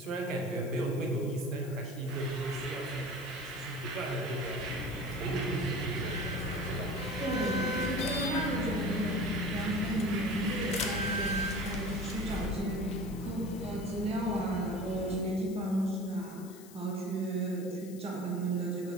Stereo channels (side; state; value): left; noise; hiss, 19 dB below the sound